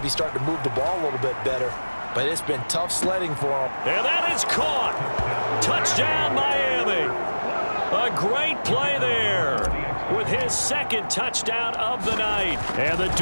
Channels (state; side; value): inverted; both; correlation -1.00